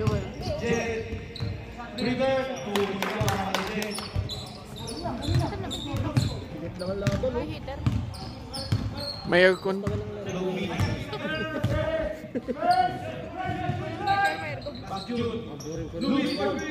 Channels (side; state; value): both; identical; correlation 1.00